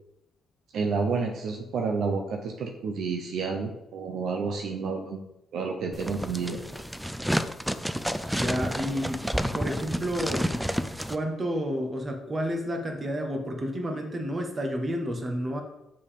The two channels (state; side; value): normal; both; correlation 0.82